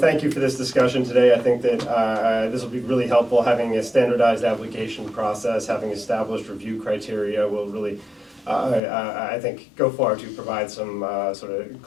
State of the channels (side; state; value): right; drops out; at 8.8 s